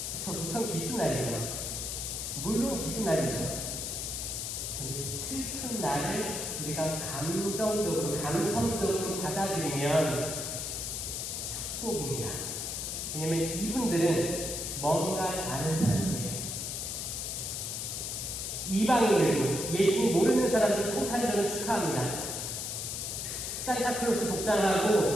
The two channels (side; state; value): left; noise; hiss, 4 dB below the sound